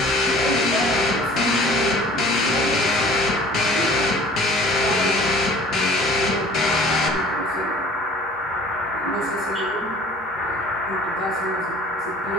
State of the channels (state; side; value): normal; both; correlation 0.48